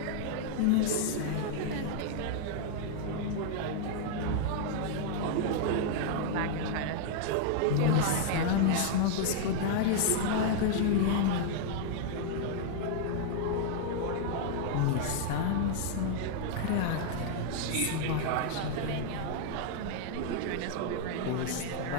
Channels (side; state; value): both; different; correlation 0.00